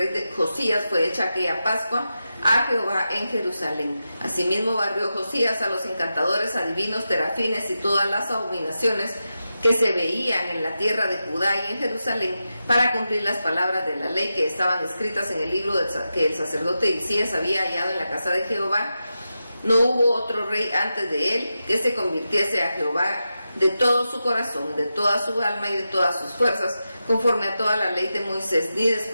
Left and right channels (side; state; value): both; inverted; correlation -0.90